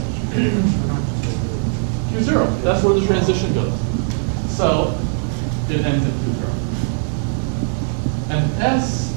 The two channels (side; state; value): left; silent; digital silence